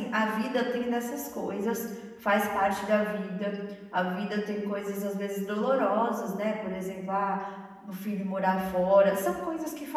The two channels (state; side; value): identical; both; correlation 1.00